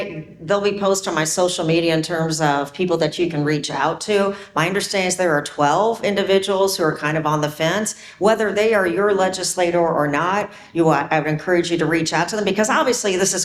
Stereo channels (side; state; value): both; identical; correlation 1.00